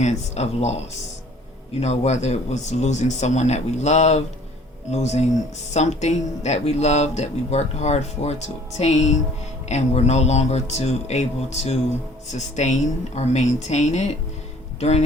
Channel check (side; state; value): both; normal; correlation 0.54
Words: of loss. Whether it was losing someone that we loved, losing something that we loved, that we worked hard for to obtain, and we're no longer able to sustain or maintain it during